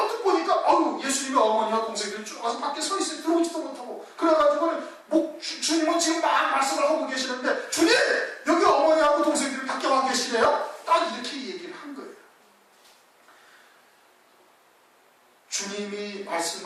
보니까 예수님의 어머니와 동생들이 쭉 와서 밖에 서 있어요. 들어오지도 못하고. 그래가지고는 주님은 지금 막 말씀을 하고 계시는데 주님! 여기 어머니하고 동생들이 밖에 와 계시네요? 딱 이렇게 얘기를 한 거예요. 주님이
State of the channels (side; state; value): both; identical; correlation 1.00